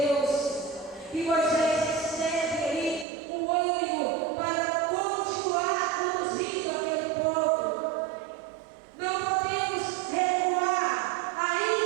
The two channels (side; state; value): left; drops out; at 3.1 s